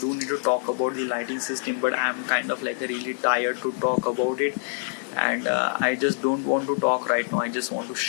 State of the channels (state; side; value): silent; right; digital silence